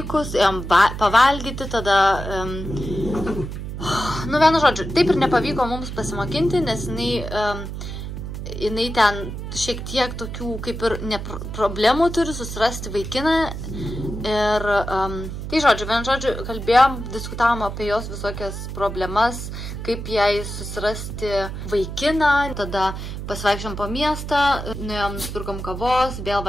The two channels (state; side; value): noise; right; hum, 7 dB below the sound